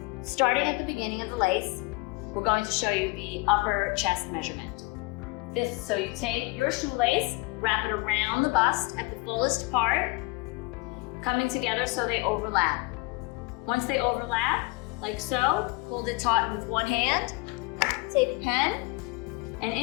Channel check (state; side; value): quieter; right; 25.3 dB